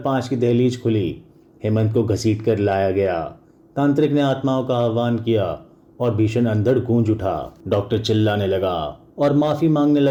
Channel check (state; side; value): identical; both; correlation 1.00